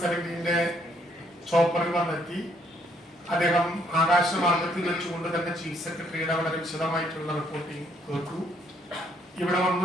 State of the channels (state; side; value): normal; both; correlation 0.69